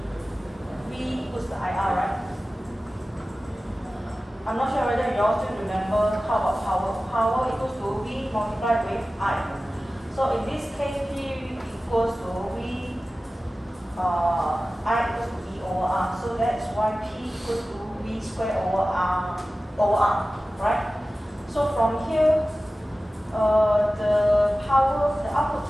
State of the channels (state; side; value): normal; both; correlation 0.96